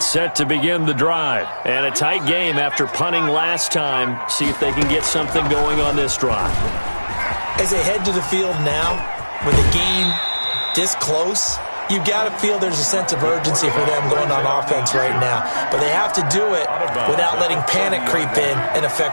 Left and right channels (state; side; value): inverted; both; correlation -1.00